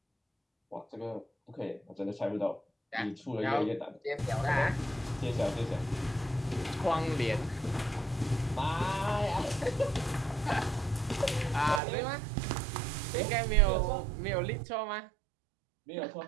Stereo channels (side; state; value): left; drops out; at 11.8 s